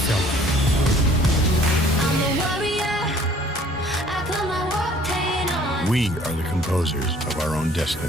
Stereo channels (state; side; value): normal; both; correlation 0.56